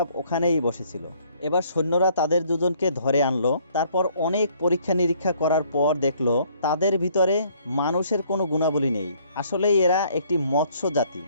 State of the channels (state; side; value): inverted; both; correlation -0.62